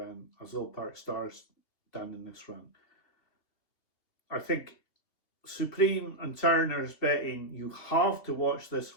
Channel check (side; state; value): right; late; 2.7 ms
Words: as Old Park Star's done in this run. I think Supreme and Turner's betting, you have to watch this